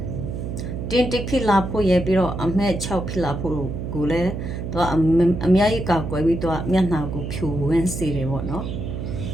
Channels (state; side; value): noise; right; hum, 5 dB below the sound